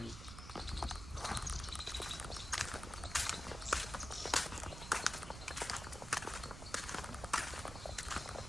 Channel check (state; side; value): noise; right; rumble, 10 dB below the sound